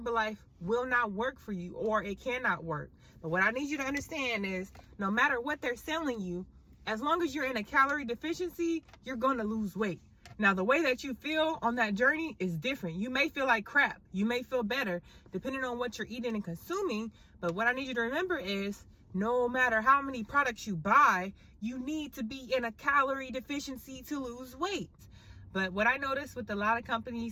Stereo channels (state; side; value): identical; both; correlation 1.00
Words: will not work for you or it cannot work. But what I need you to understand is no matter what they're selling you, as long as you're in a calorie deficiency, you're going to lose weight. Now, the way that you feel on that journey is different. You may feel like crap. You may feel better depending on what you're eating and consuming. But what I need you to remember is no matter how many products you buy, you need to be in a calorie deficiency to lose weight. But what I noticed with a lot of